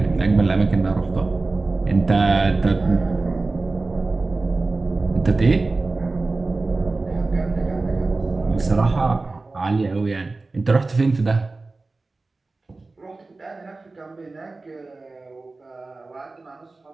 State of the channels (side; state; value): left; quieter; 3.5 dB